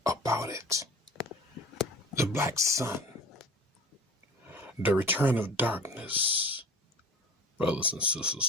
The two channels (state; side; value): normal; both; correlation 0.40